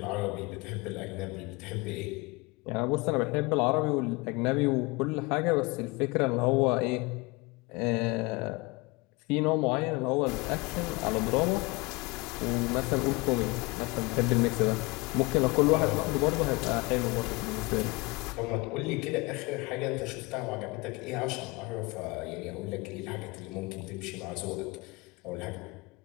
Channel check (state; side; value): quieter; right; 24.9 dB